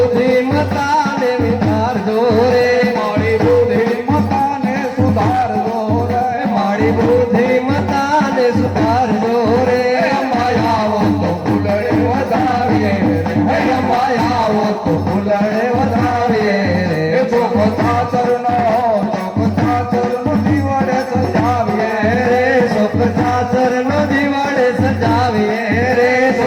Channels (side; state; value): both; identical; correlation 1.00